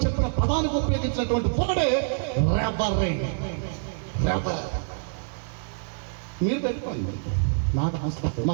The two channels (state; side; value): silent; left; digital silence